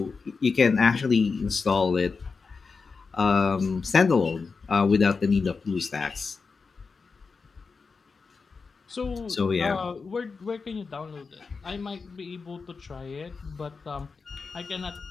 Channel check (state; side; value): quieter; right; 4.8 dB